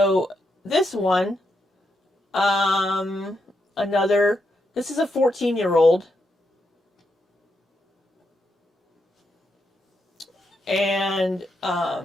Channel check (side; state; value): both; normal; correlation 0.82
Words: this one, this is a 14-year-old. And,